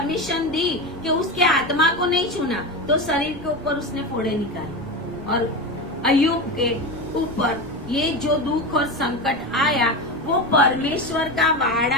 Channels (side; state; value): right; noise; rumble, 18 dB below the sound